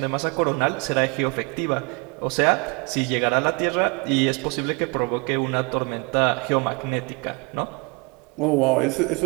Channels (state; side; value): quieter; left; 30.7 dB